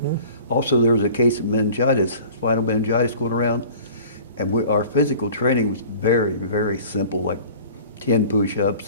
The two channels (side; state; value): both; inverted; correlation -0.45